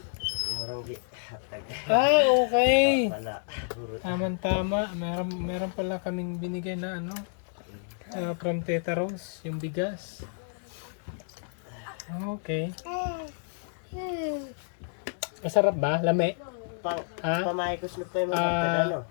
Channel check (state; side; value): silent; right; digital silence